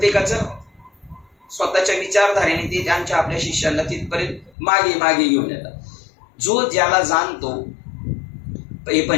स्वतःच्या विचारधारेने ते त्यांच्या आपल्या शिष्यांना तिथपर्यंत मागे मागे घेऊन येतात. जो ज्याला जाणतो हे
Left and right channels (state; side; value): drops out; right; at 4.5 s